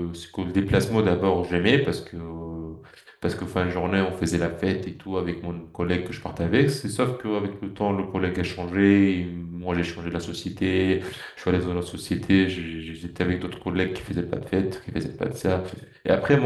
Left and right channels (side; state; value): both; identical; correlation 1.00